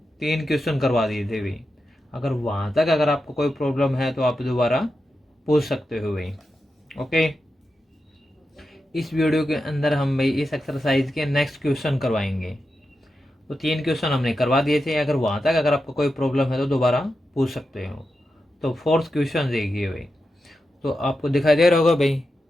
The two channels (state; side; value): normal; both; correlation 0.89